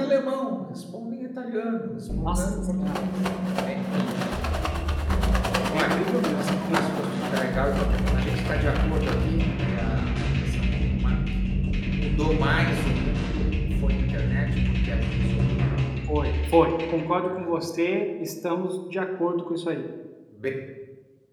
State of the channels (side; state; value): both; identical; correlation 1.00